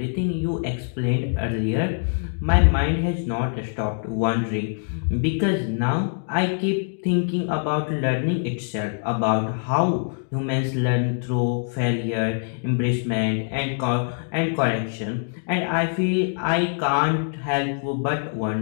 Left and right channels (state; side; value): silent; right; digital silence